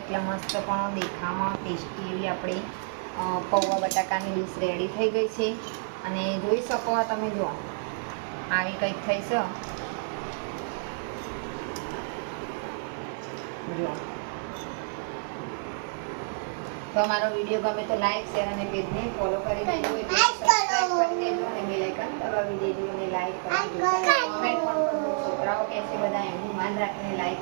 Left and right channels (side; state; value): left; silent; 59 dB below the other